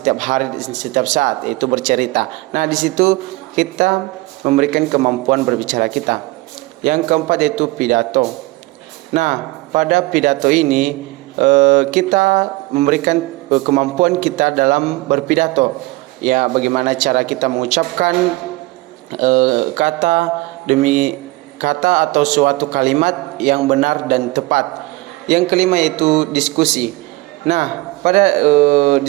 hari, setiap saat, yaitu bercerita. Nah, di situ kita memberikan kemampuan berbicara kita. Yang keempat yaitu pidato. Nah, pada pidato ini kita memberikan kemampuan kita dalam berpidato. Ya, bagaimana cara kita mengucapkan kata demi kata atau suatu kalimat yang benar dan tepat. Yang kelima yaitu diskusi. Nah, pada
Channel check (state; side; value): quieter; left; 21.7 dB